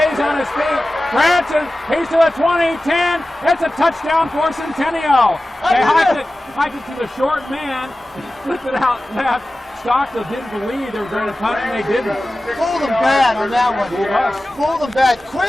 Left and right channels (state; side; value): normal; both; correlation 0.95